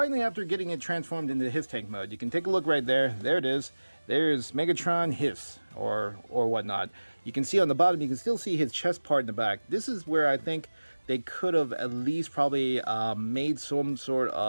after getting it transformed into HISS tank mode, you can take a look right there. There it is. There's Megatron HISS or whatnot. You can see on the bottom, you can still see his chest part in the back. This is where I think they could have at least probably made some sort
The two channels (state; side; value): inverted; both; correlation -1.00